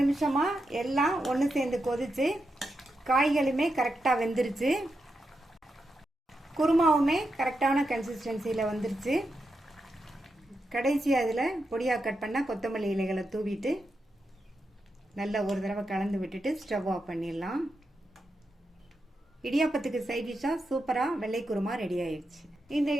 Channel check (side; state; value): both; normal; correlation 0.86